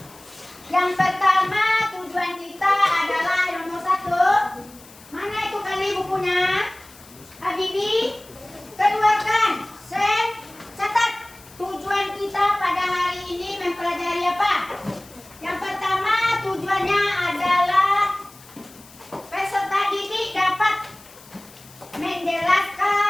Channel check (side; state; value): left; noise; hiss, 22 dB below the sound